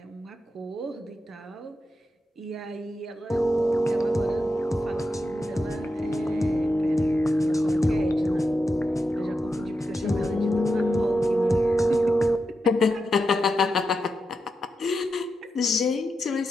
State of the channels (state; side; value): normal; both; correlation 0.88